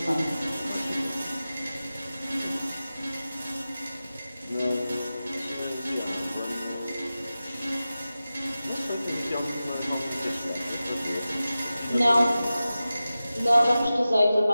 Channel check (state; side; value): inverted; both; correlation -0.95